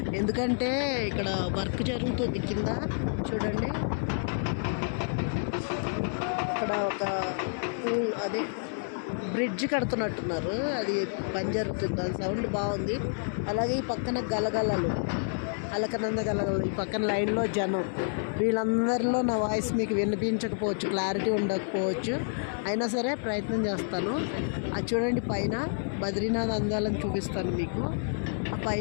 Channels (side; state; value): right; silent; 58 dB below the other